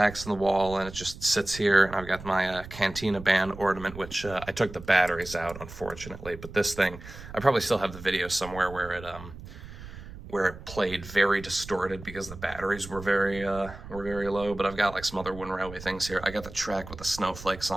in the wall, and it just sits here. And I've got my Cantina band ornament, which I took the batteries out, unfortunately. But this thing, I probably still have the video somewhere where it played very distorted because the batteries were very low. But I've got like some other Wooden Railway things here. I got the track with the snowflakes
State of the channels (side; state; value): right; noise; rumble, 14 dB below the sound